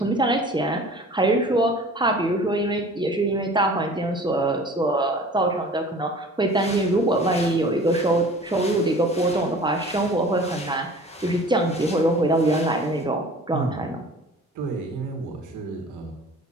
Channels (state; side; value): normal; both; correlation 0.45